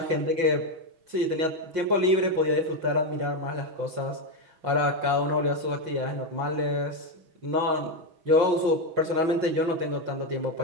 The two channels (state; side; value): late; left; 5.6 ms